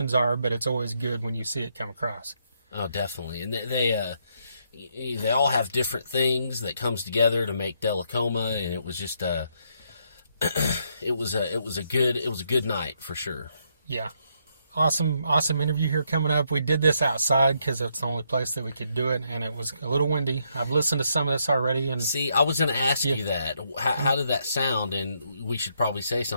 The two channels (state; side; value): inverted; both; correlation -0.75